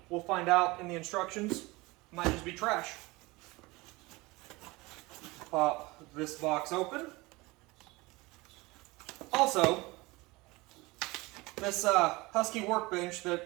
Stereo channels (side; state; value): left; quieter; 22.9 dB